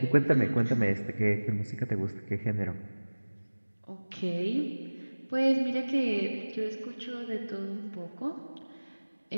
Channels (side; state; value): both; inverted; correlation -1.00